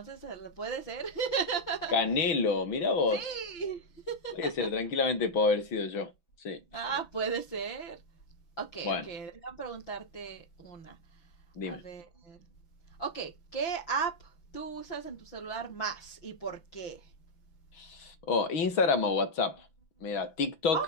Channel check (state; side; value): late; right; 6.0 ms